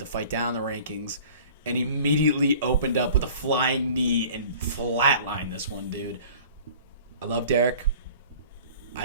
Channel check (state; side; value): inverted; both; correlation -0.46